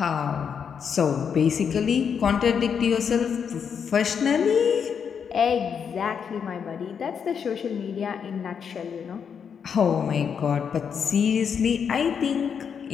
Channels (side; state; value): right; quieter; 7.1 dB